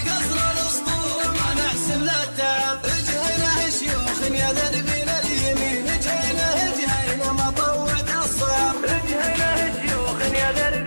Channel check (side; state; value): both; inverted; correlation -1.00